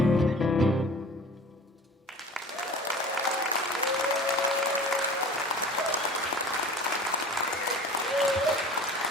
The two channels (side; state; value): both; normal; correlation 0.42